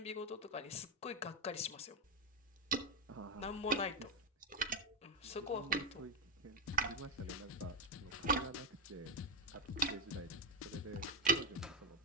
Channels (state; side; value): normal; both; correlation 0.09